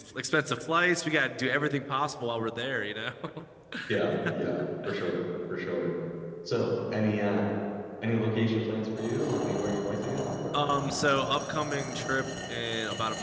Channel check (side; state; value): both; identical; correlation 1.00